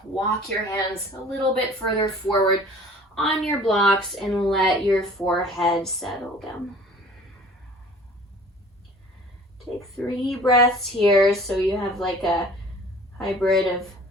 Walk your hands a little bit further forward on your blocks and let your forehead settle down. Take 3 breaths here so you have like a hybrid of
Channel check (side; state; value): both; normal; correlation 0.48